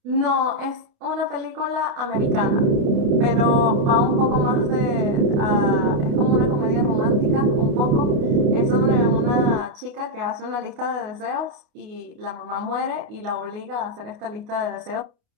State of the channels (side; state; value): left; late; 29 ms